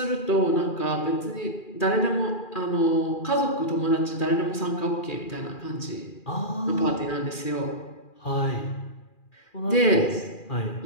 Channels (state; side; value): late; right; 2.4 ms